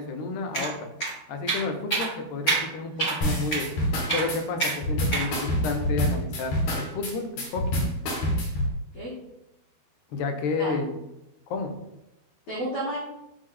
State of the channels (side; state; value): right; late; 13 ms